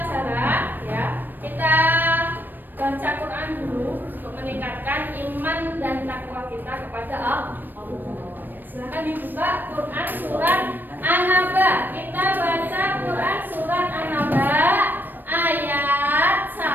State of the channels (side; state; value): left; late; 0.092 ms